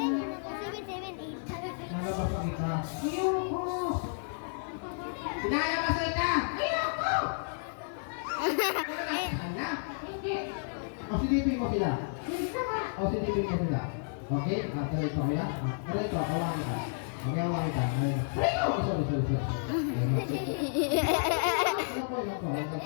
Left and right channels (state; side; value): silent; right; digital silence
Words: 8. Nalabas ang ika. Ayoko! Pinalabas ang ika! Ayoko! Ano? O silipin mo sila. O silipin mo sila. Okay? Tuloy ko kuya. Tuloy ko. Hawakan kita. Okay, hawakan kita. Sorry. Ano po?